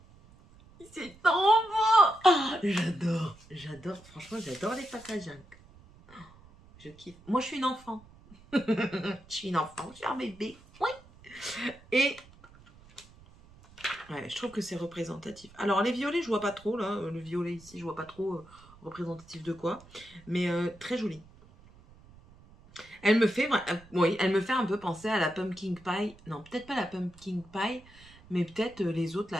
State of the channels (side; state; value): right; noise; rumble, 24 dB below the sound